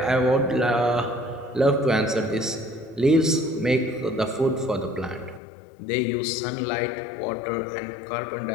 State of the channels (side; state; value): right; drops out; at 5.4 s